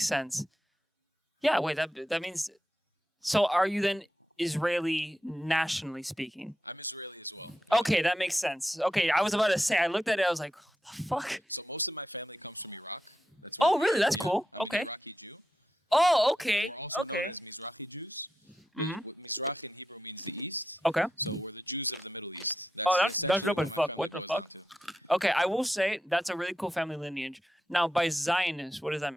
sense. Yeah, wait, that means... So are you then Israeli nationally speaking? Okay, that makes sense. Okay, I was about to say, I looked at it, I was like, what the fuck? Oh, really? That's cool. Okay. Oh, okay. Okay. Mm-hmm. Okay. Oh, that's dope as fuck. What the fuck? Okay, I will say that's a really cool family lineage. Now, by Zionist, what does that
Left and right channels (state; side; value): normal; both; correlation 0.86